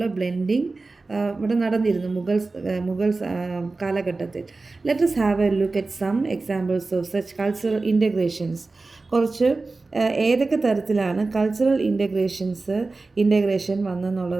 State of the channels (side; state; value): left; quieter; 3.6 dB